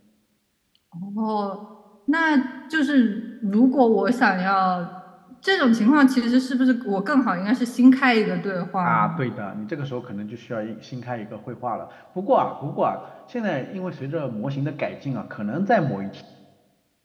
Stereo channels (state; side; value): identical; both; correlation 1.00